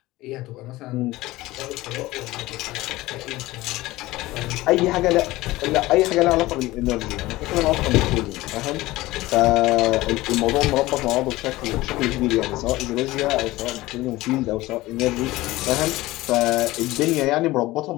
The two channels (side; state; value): right; quieter; 18.5 dB